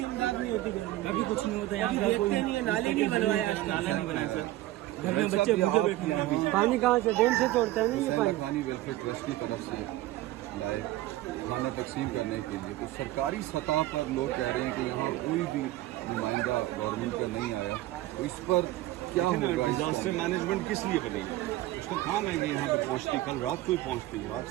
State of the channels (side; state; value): left; quieter; 16.2 dB